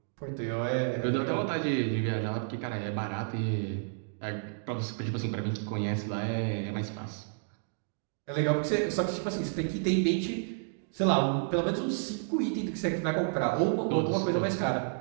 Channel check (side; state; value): left; silent; digital silence